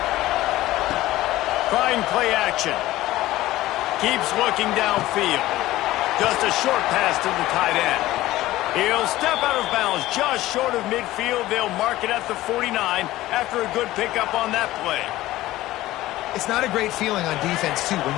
Trying play action. Keeps looking downfield. Just a short pass to the tight end. He'll step out of bounds just short of midfield. They'll mark it at the 49 after a good pickup on that play. It's not a great feeling on defense, too. When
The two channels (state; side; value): quieter; right; 16.4 dB